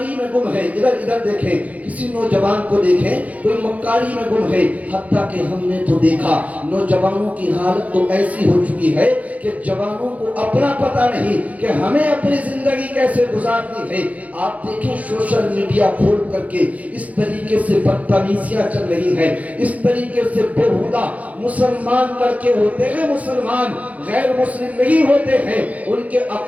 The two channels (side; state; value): left; late; 0.070 ms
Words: میں گم ہے، ادھر دیکھیں کسی نوجوان کو دیکھیں کوئی مکاری میں گم ہے۔ حتیٰ کہ ہم نے تو دیکھا نوجوانوں کی حالت تو ایسی ہو چکی ہے کہ جوانوں کو اپنا پتہ نہیں کہ ہمیں اپنی زندگی کیسے گزارنی ہے۔ آپ دیکھیں سوشل میڈیا کھول کر کے اس طریقے سے بدتمیزیاں چل رہی ہیں، اس طریقے سے بےہودہ مسلمان لڑکے ہوتے ہیں، مسلمان غیر مسلم نہیں ہوتے ہیں، ان کے